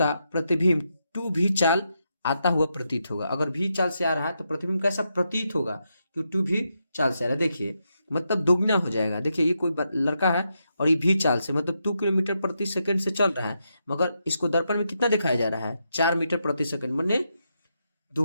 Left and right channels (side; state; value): both; inverted; correlation -0.83